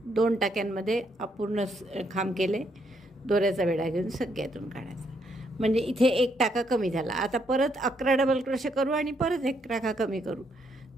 2 टाक्यांमध्ये अपूर्ण खांब केले, दोऱ्याचा वेढा घेऊन सगळ्यातून काढायचा. म्हणजे इथे एक टाका कमी झाला. आता परत 11 डबल क्रोशे करू आणि परत एक टाका कमी करू.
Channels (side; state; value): both; normal; correlation 0.74